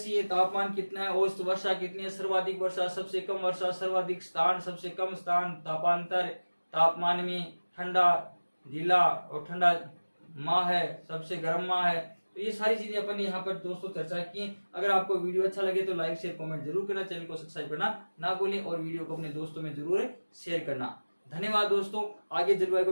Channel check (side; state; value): both; inverted; correlation -1.00